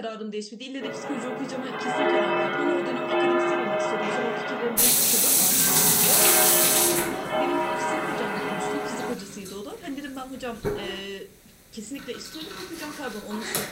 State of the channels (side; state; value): both; identical; correlation 1.00